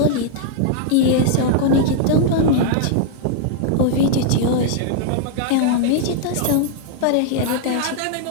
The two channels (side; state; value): both; different; correlation 0.00